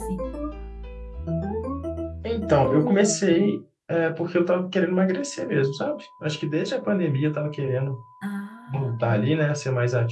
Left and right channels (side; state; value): both; identical; correlation 1.00